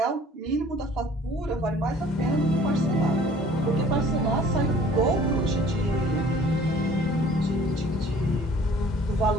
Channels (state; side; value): normal; both; correlation 0.52